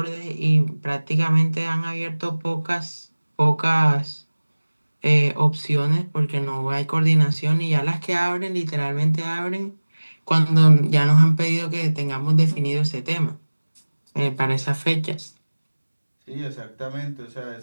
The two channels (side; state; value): both; inverted; correlation -1.00